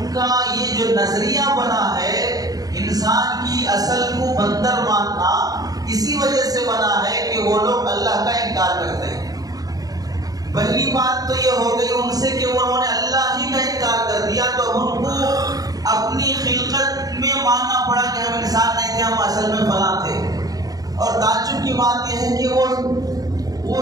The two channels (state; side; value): late; left; 0.18 ms